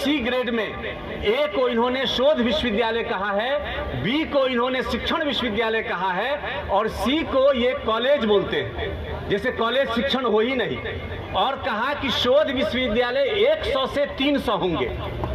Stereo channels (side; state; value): both; identical; correlation 1.00